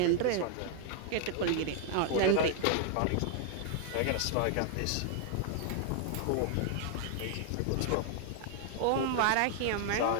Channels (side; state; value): both; different; correlation 0.00